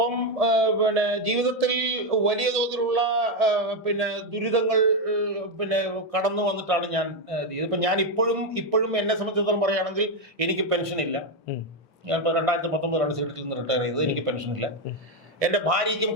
പിന്നെ ജീവിതത്തിൽ വലിയ തോതിലുള്ള പിന്നെ ദുരിതങ്ങൾ പിന്നെ കടന്നു വന്നിട്ടാണ് ഞാൻ ഇപ്പൊ ഞാൻ ഇപ്പോഴും എന്നെ സംബന്ധിച്ചിടത്തോളം പറയുകയാണെങ്കിൽ എനിക്ക് പെൻഷൻ ഇല്ല. ഞാൻ 2019 സീറ്റിൽ നിന്ന് റിട്ടയർ ചെയ്തത്. എനിക്ക് പെൻഷൻ ഇല്ല. എന്റെ ഭാര്യയ്ക്കും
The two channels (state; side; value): normal; both; correlation 0.06